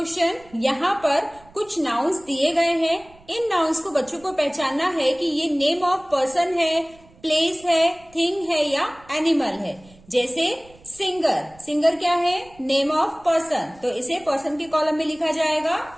यहां पर कुछ नाउन्स दिए गए हैं, इन नाउन्स को बच्चों को पहचानना है कि ये नेम ऑफ पर्सन है, प्लेस है, थिंग है या एनिमल है। जैसे सिंगर, सिंगर क्या है? नेम ऑफ पर्सन, तो इसे पर्सन के कॉलम में लिखा जाएगा।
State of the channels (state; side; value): noise; right; rumble, 26 dB below the sound